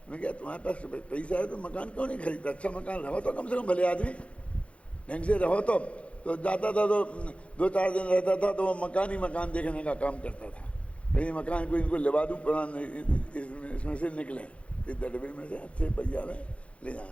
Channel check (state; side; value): late; right; 0.062 ms